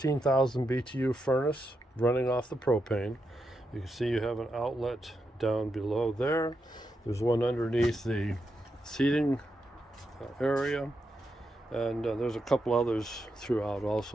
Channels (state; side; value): normal; both; correlation 0.85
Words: BTU furnace running off the propane. You can see you have an outlet down below there. There's one underneath the seating area. And there's a couple others throughout